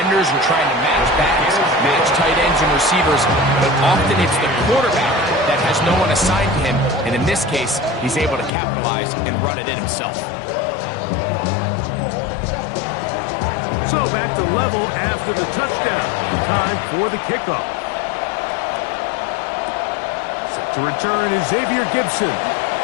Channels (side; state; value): right; drops out; at 8.5 s